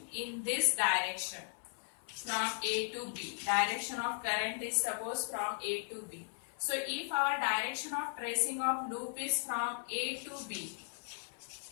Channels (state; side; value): silent; right; 53 dB below the other